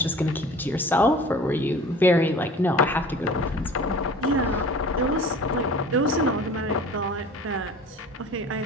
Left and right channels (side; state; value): both; normal; correlation 0.43